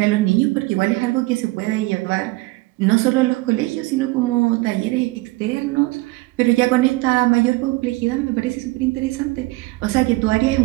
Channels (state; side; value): quieter; left; 21.6 dB